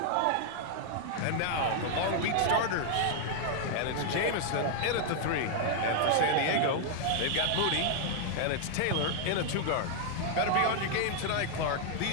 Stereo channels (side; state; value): both; different; correlation 0.00